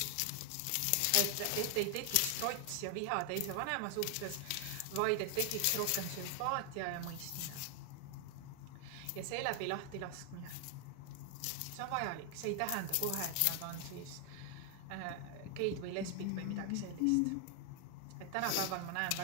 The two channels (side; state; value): both; different; correlation 0.00